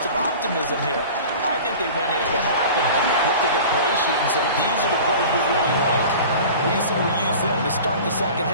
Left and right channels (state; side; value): inverted; both; correlation -0.39